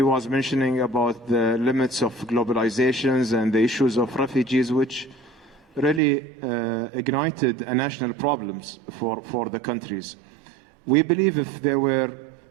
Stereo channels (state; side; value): drops out; left; at 6.0 s